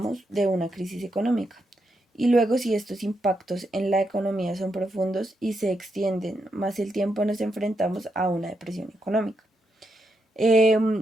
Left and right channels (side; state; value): both; normal; correlation 0.82